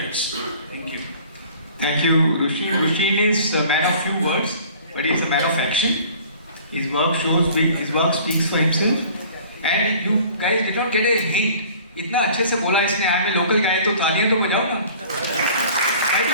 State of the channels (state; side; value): inverted; both; correlation -0.48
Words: Thank you. Thank you, Rushin. Rushin is a man of few words, but he is a man of action. His work speaks for himself. And you guys did not get a hint. इतना अच्छे से बोला इसने, I am a local guy, तो तालियां तो बजाओ ना.